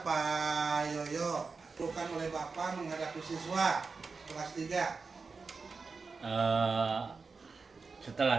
Pak Yoyo, bukan oleh Bapak menghadapi siswa kelas 3.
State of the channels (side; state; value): left; quieter; 4.5 dB